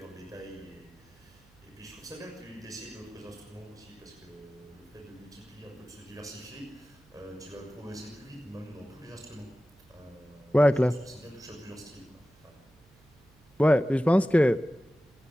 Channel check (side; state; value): right; noise; hum, 29 dB below the sound